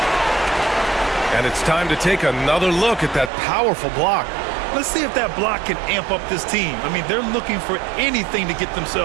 And it's time to take another look at that powerful block. Let's see if that block can amp up this team. I mean, they're looking for anything to get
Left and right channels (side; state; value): left; drops out; at 3.3 s